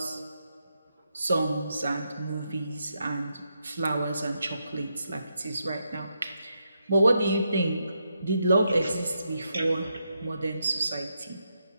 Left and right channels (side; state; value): both; inverted; correlation -0.82